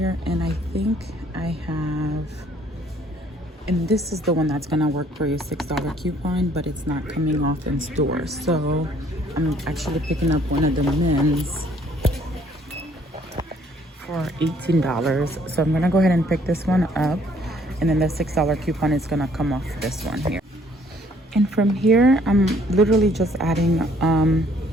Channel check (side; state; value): both; normal; correlation 0.62